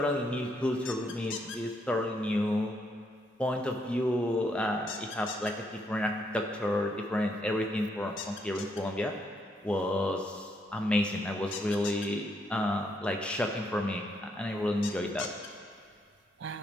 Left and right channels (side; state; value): both; normal; correlation 0.75